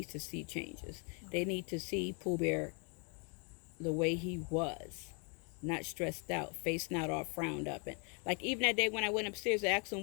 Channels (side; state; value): right; quieter; 37.3 dB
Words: to see changes. They need to see Pooh Bear the way he was. Not stressed out, face not all frowned up. And like even that day when I went upstairs to ask him